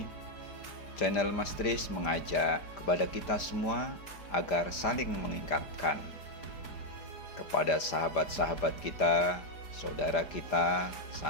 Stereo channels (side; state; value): right; late; 5.0 ms